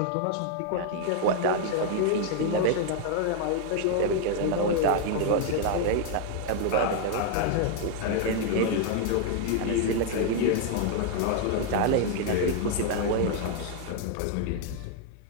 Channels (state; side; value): different; both; correlation 0.00